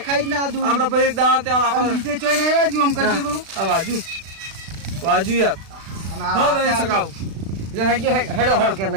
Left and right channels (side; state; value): left; late; 36 ms